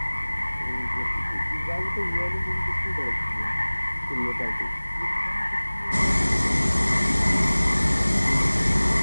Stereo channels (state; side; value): inverted; both; correlation -1.00